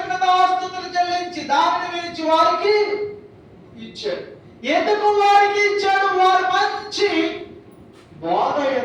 చెల్లించి దానిని విరిచి వారికి ఇచ్చాడు. ఎందుకు వారికి ఇచ్చాడు? వారు మంచి బోధ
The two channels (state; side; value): identical; both; correlation 1.00